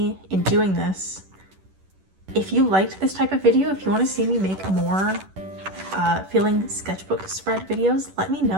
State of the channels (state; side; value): late; left; 10 ms